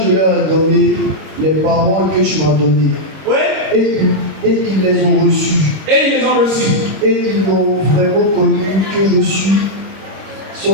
leur ai donné les paroles que tu m'as données. Oui. Et ils les ont reçues. Et ils les ont reçus. Et ils m'ont vraiment connu que je suis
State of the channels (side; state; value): left; late; 26 ms